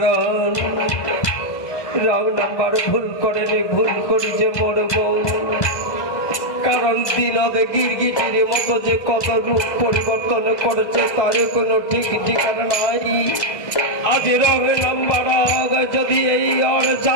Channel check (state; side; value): late; right; 1.6 ms